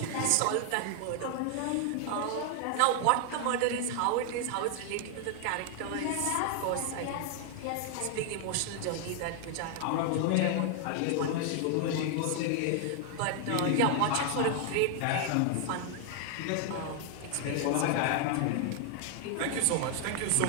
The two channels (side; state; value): both; different; correlation 0.00